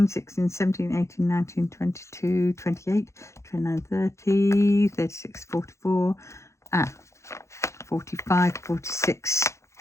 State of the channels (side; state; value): right; late; 0.14 ms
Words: 16, 17, 18, 19, 22, 28, 29, 30, 36, 44, 45, 46.